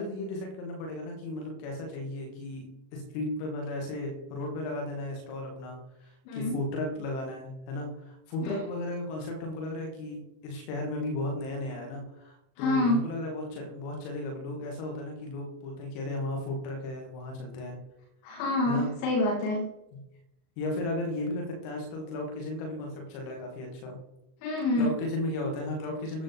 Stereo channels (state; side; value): late; right; 38 ms